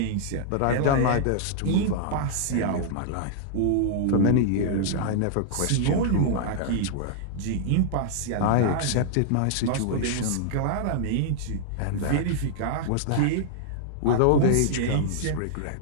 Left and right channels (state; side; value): different; both; correlation -0.01